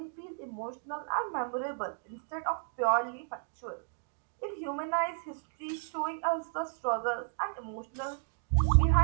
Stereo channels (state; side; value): silent; left; digital silence